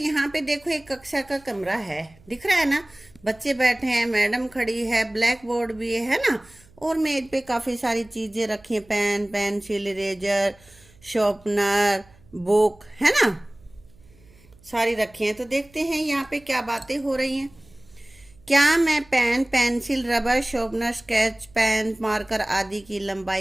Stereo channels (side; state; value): right; noise; hum, 27 dB below the sound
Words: पे देखो एक कक्षा का कमरा है, दिख रहा है ना? बच्चे बैठे हैं, मैडम खड़ी है, ब्लैक बोर्ड भी है ना, और मेज पे काफी सारी चीजें रखी हैं, pen, pencil, eraser, sharpener, book, है ना, सारी रखी हैं। तो देखते हैं यहाँ पे क्या बातें हो रही हैं। क्या मैं pen, pencil, rubber, sharpener, sketch pen, marker आदि की